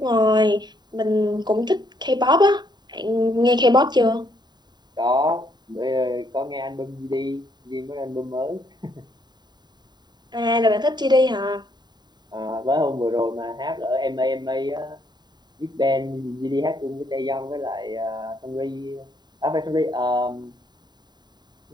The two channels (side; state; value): left; late; 0.21 ms